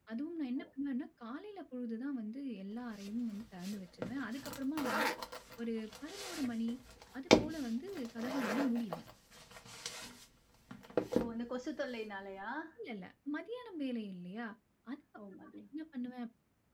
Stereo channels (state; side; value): identical; both; correlation 1.00